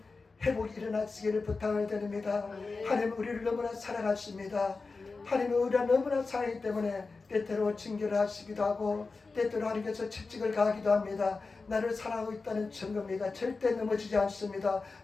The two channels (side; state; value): right; quieter; 4.1 dB